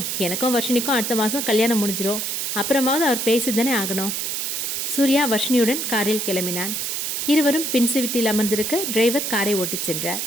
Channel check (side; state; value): right; noise; hiss, 2 dB below the sound